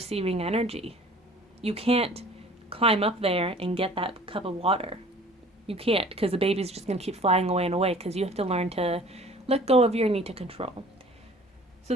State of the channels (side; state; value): both; normal; correlation 0.49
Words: energy. You can't climb up there and get that cup of water. You can't, because the baby's just going to keep flying away and away, because you have to learn to let go of your need to control. So